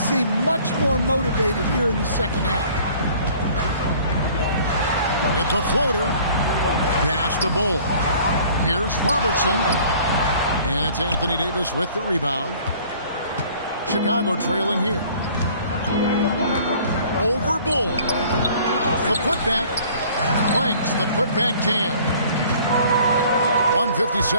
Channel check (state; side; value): inverted; both; correlation -0.52